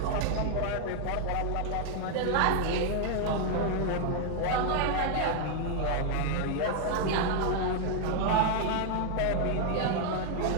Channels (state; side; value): different; both; correlation 0.00